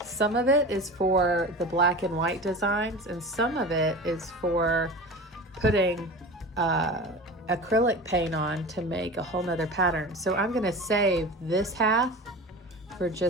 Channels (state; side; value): normal; both; correlation 0.32